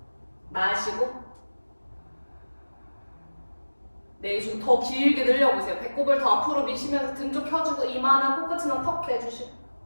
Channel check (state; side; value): inverted; both; correlation -1.00